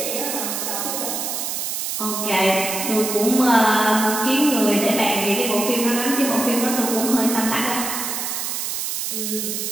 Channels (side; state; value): right; noise; hiss, 3 dB below the sound